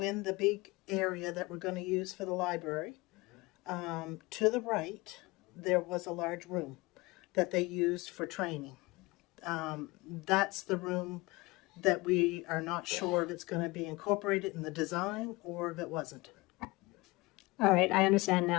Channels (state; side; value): quieter; right; 22.9 dB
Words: in the big area that we're going to use for the library, to the right, there was a large room that they used for training. That's the room that we are not sure if it's going to be incorporated in the design or if it wasn't. All right, I understand